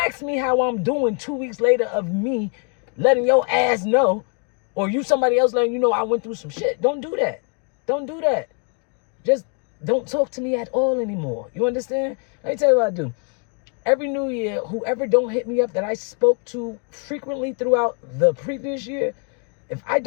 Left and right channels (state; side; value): quieter; right; 39.9 dB